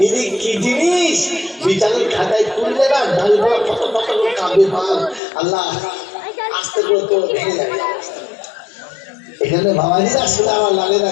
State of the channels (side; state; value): right; drops out; at 5.2 s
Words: এই কি জিনিস বিচারের খাতায় তুললে না দাঁড়িয়ে কত কত করে কাঁদবে মাল আল্লাহ আস্তে করে তো ভেঙে যাবে এখানে বাবাজি আসলে আমার লাগে না